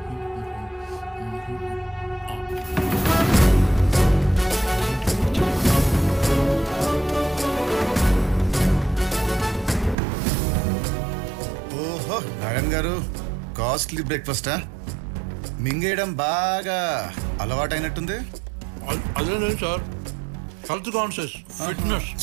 ఓహో నారాయణ గారు, కాస్ట్లీ బ్రేక్ఫాస్టా? మింగేయడం బాగా అలవాటైనట్టుంది. అదే లేదు sir, health conscious, fitness.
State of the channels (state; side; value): drops out; left; at 10.0 s